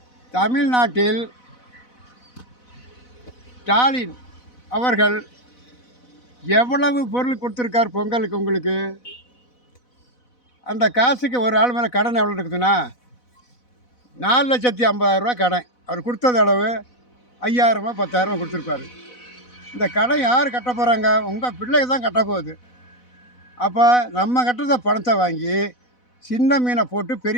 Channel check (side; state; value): right; late; 4.0 ms